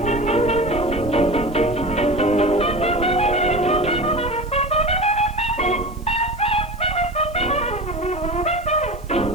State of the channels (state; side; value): noise; right; hiss, 28 dB below the sound